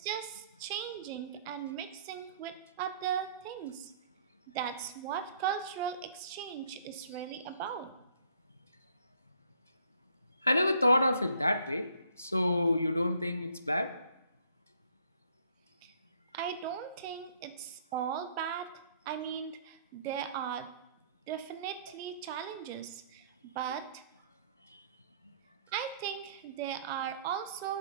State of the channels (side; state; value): both; inverted; correlation -0.63